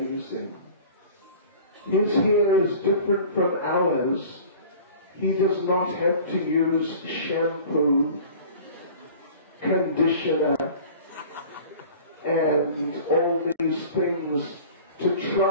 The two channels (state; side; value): inverted; both; correlation -0.43